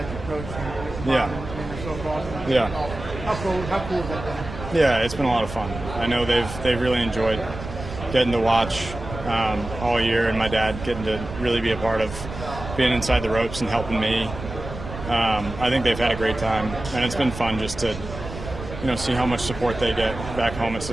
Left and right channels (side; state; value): right; noise; rumble, 10 dB below the sound